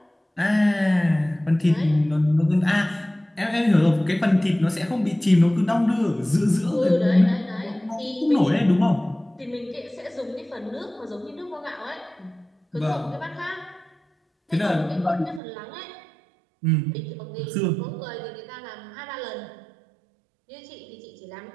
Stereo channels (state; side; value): drops out; left; at 15.4 s